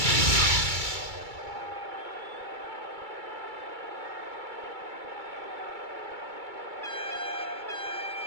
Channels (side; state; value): left; late; 2.3 ms